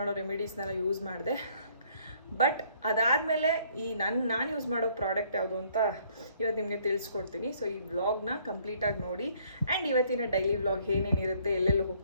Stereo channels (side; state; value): both; inverted; correlation -0.63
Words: ರೆಮಿಡೀಸ್ನೆಲ್ಲ ಯೂಸ್ ಮಾಡಿದೆ. ಬಟ್ ಅದಾದಮೇಲೆ ಈ ನಾನು ಯೂಸ್ ಮಾಡೋ ಪ್ರಾಡಕ್ಟ್ ಯಾವುದು ಅಂತ ಇವತ್ತು ನಿಮಗೆ ತಿಳಿಸ್ಕೊಡ್ತೀನಿ. ಸೊ ಈ ವ್ಲಾಗ್ನ ಕಂಪ್ಲೀಟಾಗಿ ನೋಡಿ. ಆ್ಯಂಡ್ ಇವತ್ತಿನ ಡೈಲಿ ವ್ಲಾಗ್ ಏನೇನಿರುತ್ತೆ, ಎಲ್ಲೆಲ್ಲಿ